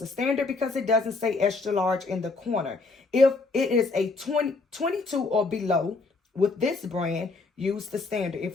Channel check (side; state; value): right; quieter; 3.8 dB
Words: a standard because it doesn't say extra large in the corner. If it is a 22 or below with this brand, use the standard.